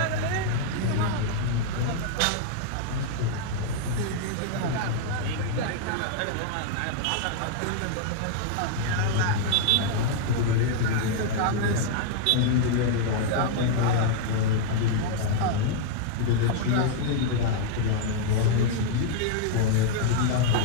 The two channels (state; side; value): different; both; correlation -0.01